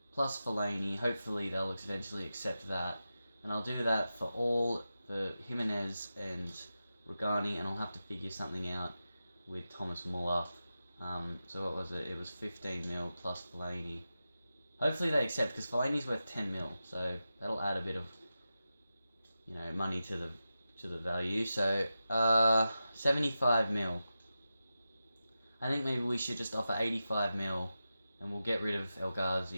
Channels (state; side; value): inverted; both; correlation -0.92